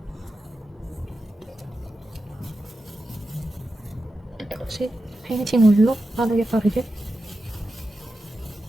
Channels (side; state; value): both; normal; correlation 0.90